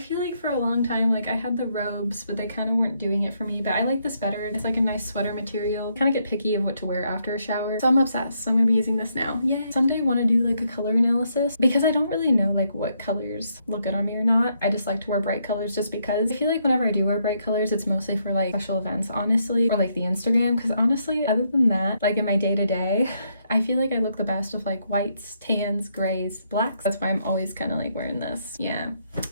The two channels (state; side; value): inverted; both; correlation -0.75